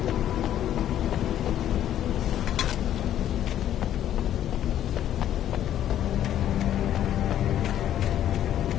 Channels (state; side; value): quieter; right; 11.2 dB